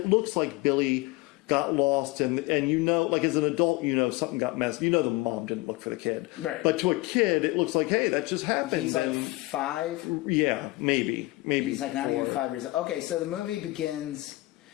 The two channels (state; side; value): quieter; right; 21.0 dB